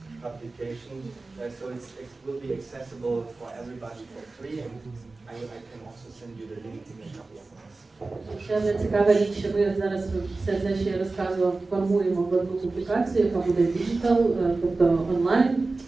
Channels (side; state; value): left; quieter; 3.5 dB